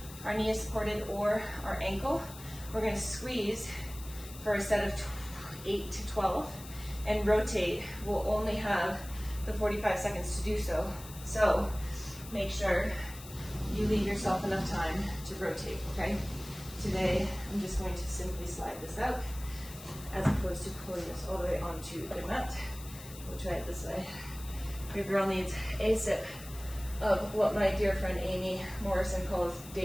is supported or our ankle. We're going to squeeze for a set of 8 to 12 and rotate. We'll only have the 45 seconds to do so. So make sure you leave yourself enough time to rotate, okay? Today, I'm just going to simply slide this out as opposed to pulling this all the way onto the mat. We'll try it this way. Your girl needs a sip of what my dear friend Amy Morrison calls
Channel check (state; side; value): noise; left; hiss, 15 dB below the sound